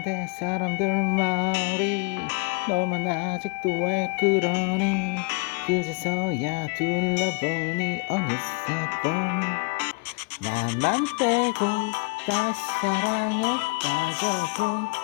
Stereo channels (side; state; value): right; quieter; 28.2 dB